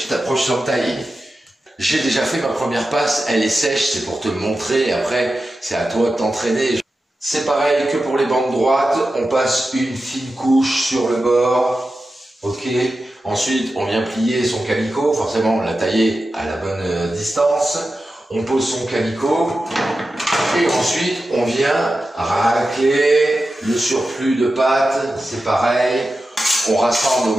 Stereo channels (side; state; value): both; normal; correlation 0.92